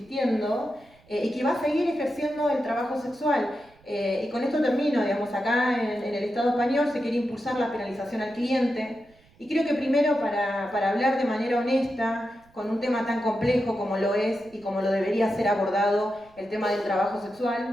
y que va a seguir ejerciendo el trabajo sexual. Y con esto termino, digamos, acá en el Estado español se quiere impulsar la penalización al cliente, y creo que primero para hablar de manera honesta, con un tema tan complejo como lo es y como lo debería ser abordado el tema del trabajo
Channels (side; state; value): right; noise; rumble, 30 dB below the sound